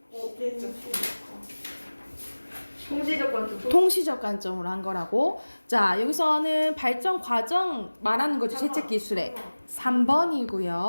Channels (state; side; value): inverted; both; correlation -1.00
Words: 통시적 관점으로 한 거라고. 자, 여기서는 발전 과정 말하는 거죠. 채책 기술에